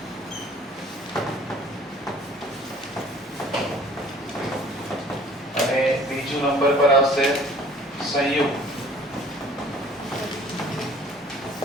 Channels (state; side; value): normal; both; correlation 0.52